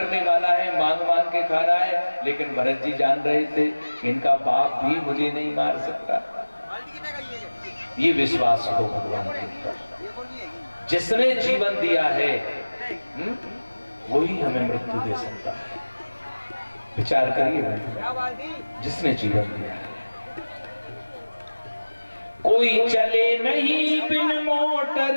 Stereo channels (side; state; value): both; inverted; correlation -1.00